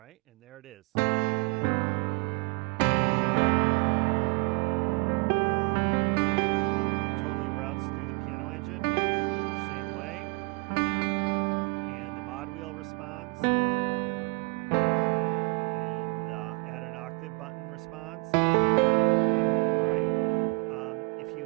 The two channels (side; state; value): left; quieter; 33.1 dB